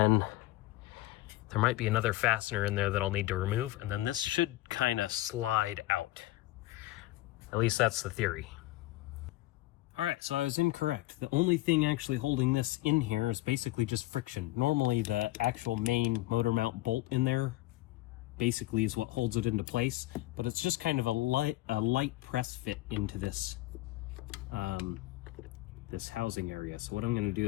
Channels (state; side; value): quieter; right; 18.0 dB